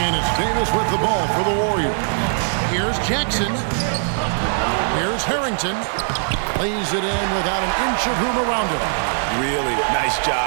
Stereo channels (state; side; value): silent; left; digital silence